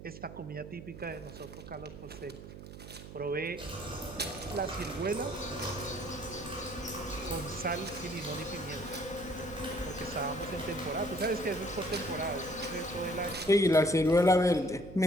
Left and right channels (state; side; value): noise; right; hum, 13 dB below the sound